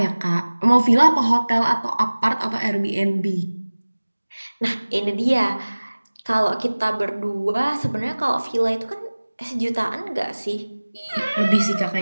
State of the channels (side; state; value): both; inverted; correlation -1.00